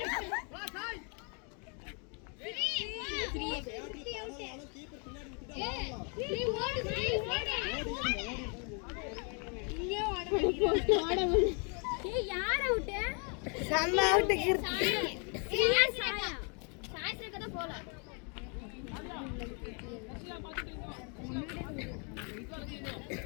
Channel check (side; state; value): right; quieter; 37.2 dB